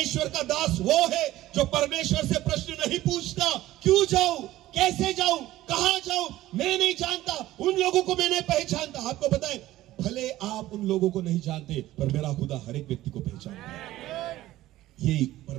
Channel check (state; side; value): quieter; left; 15.6 dB